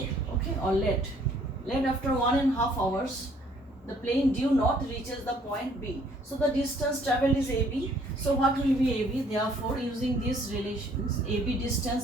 okay, or let after 1.5 hours the plane due north reaches the point B. So the distance traveled is AB. So what will be AB? Therefore, using these relations, AB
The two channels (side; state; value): both; normal; correlation 0.61